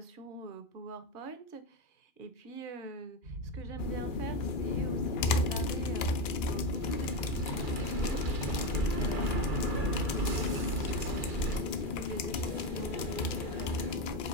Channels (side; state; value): right; late; 2.4 ms